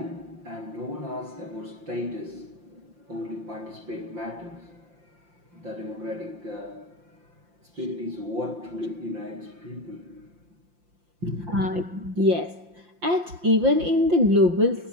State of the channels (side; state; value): left; late; 5.7 ms